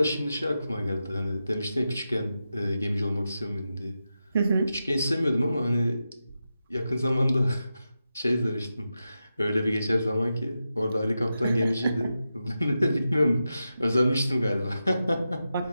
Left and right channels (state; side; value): inverted; both; correlation -0.90